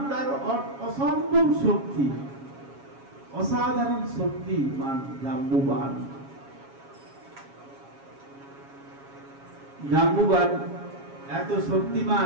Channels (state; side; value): late; left; 7.3 ms